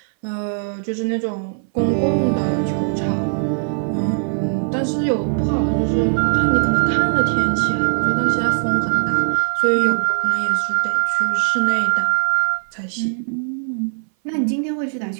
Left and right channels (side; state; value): left; silent; 60 dB below the other